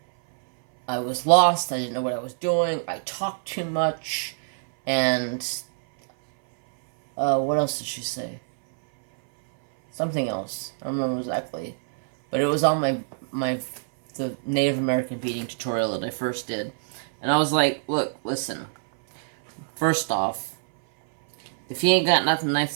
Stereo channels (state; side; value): silent; left; 59 dB below the other